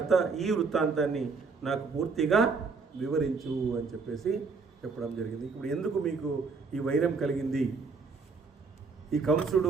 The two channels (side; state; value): left; quieter; 4.7 dB